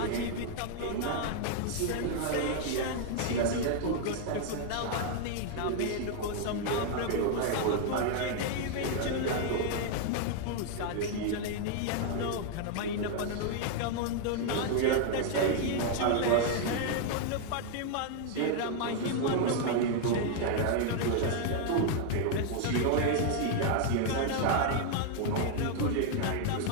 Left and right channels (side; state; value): both; different; correlation 0.00